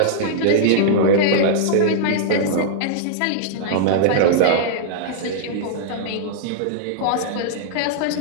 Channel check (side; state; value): both; different; correlation -0.02